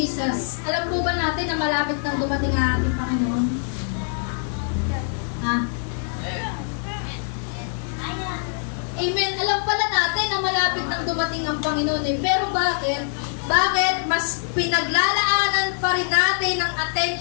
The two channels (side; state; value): right; silent; 59 dB below the other